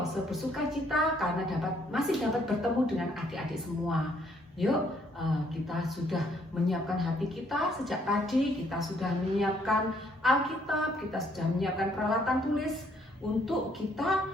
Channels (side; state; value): both; normal; correlation 0.67